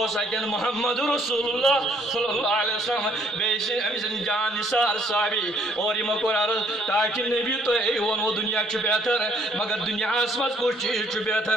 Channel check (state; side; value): normal; both; correlation 0.65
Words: سکن محمد رسول اللہ صلی اللہ علیہ وسلم بیس امس جان نثار صحابی اور یہ کور عرض تاکہ نبی تو ونو دنیا بہتر مگر دنیا مز کچھ چیز